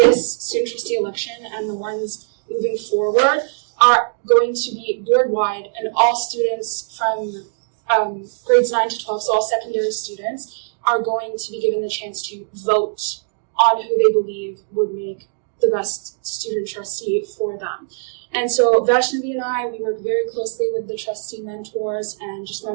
student trustee election and the ones moving forward are going to be board-wide, and all students from grades 9 to 12, so all secondary students, are going to be given the chance to vote on who they believe would make the best student trustee for them. And so Vaishnave and I, we work very closely with the trustee mentors and just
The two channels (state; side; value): silent; left; digital silence